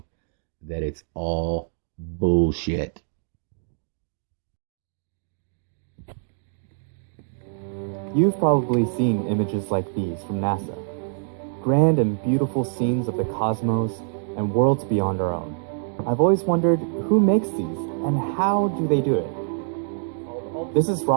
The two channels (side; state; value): left; silent; digital silence